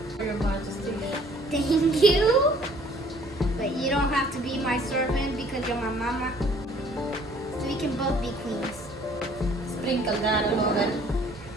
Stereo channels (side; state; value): both; normal; correlation 0.57